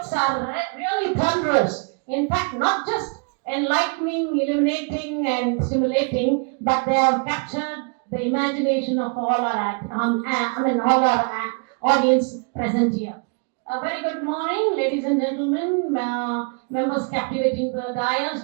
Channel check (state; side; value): quieter; left; 37.4 dB